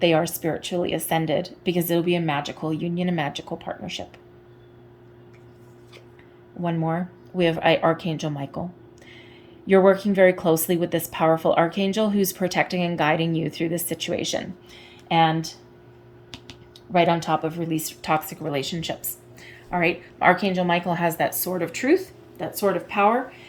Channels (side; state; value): both; identical; correlation 1.00